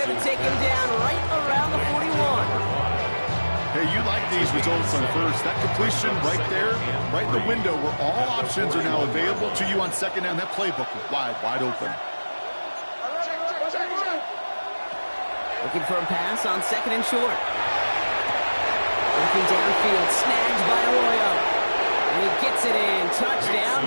to take him down right around the 41. Hey, you like these results on first. That completion right there, right in the window where all options are now available to you on second down. That playbook is wide open. Looking for a pass on second and short. Looking downfield, snagged by Arroyo. And he gets it in. Touchdown,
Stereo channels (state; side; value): inverted; both; correlation -1.00